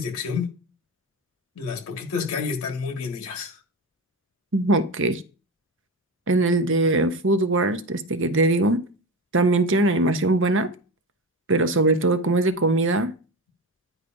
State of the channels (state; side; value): normal; both; correlation 0.22